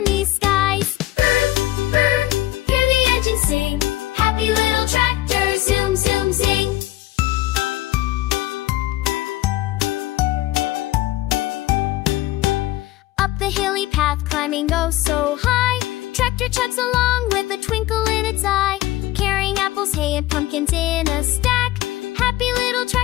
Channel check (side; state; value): right; quieter; 16.4 dB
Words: skies. Brrrm, brrrm, hear the engine sing. Happy little tractor, zoom, zoom, zing. Up the hilly path, climbing oh so high, tractor chugs along with a twinkle in its eye. Carrying apples, hay, and pumpkins in a stack. Happy little